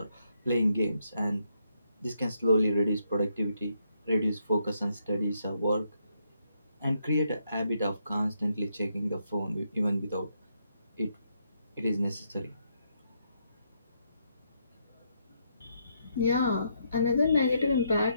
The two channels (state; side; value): inverted; both; correlation -0.77